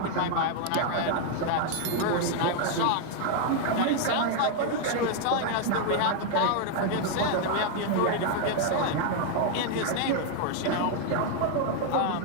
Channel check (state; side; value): different; both; correlation 0.00